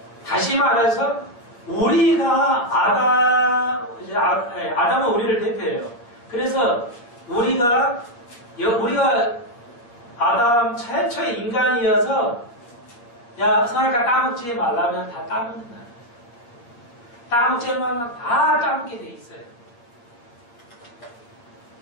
다시 말해서 우리가 아담은 우리를 대표해요. 그래서 우리가 아담 최초의 인간이어서 야, 선악과 따먹지 말라면 다 따먹는다. 따먹지 말라면 다 따먹게 돼 있어요.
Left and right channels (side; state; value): right; late; 8.5 ms